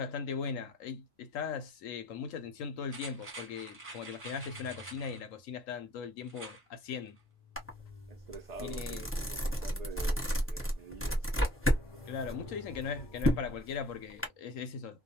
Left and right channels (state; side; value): normal; both; correlation 0.49